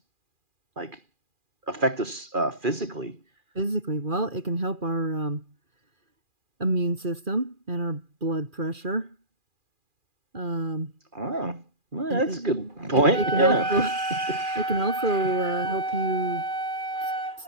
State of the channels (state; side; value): late; left; 2.4 ms